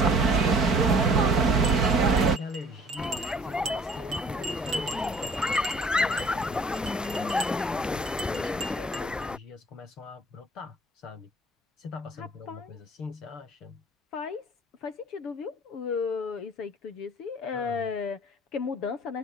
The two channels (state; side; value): normal; both; correlation 0.53